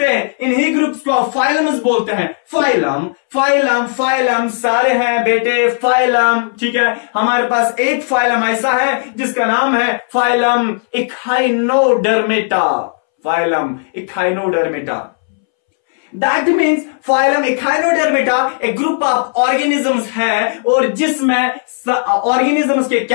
हैं, इन्हीं ग्रुप्स को आप फाइलम्स बोलते हैं। फाइलम फाइलम फाइलम सारे हैं बेटे फाइलम, ठीक है। हमारे पास एक फाइलम ऐसा है जिसका नाम है phylum echinodermata. Phylum echinodermata, that means phylum echinodermata एक ग्रुप ऑफ ऑर्गेनिजम्स है और जिसमें ऑर्गेनिजम्स के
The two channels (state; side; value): silent; right; 67 dB below the other